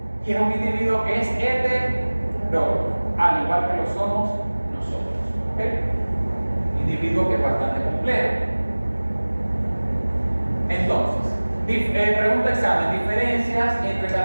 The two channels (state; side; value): inverted; both; correlation -1.00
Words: y es un individuo que es hetero, al igual que lo somos nosotros. ¿Okay? Individuo que es bastante complejo. Entonces, pregunta examen, diferencias entre